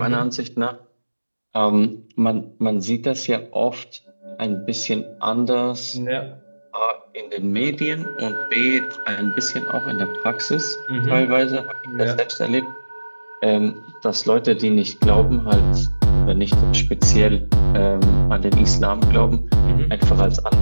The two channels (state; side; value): inverted; both; correlation -1.00